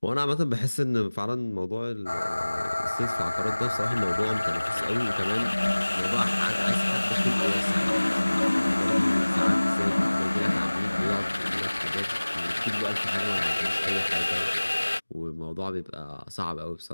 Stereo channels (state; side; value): inverted; both; correlation -1.00